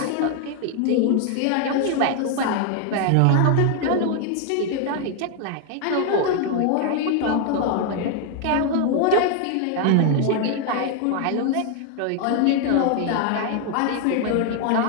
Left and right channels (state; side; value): different; both; correlation 0.00